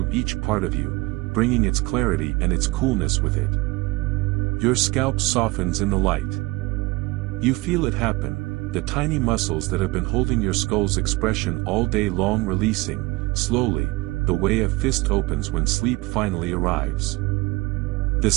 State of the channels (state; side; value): quieter; left; 22.3 dB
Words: each part of you, bringing its clarity and its coolness with it. Your scalp softens in the light. You feel it happen, the tiny muscles that have been holding your skull's expression all day long releasing, slowly, the way a fist opens when sleep finally arrives. The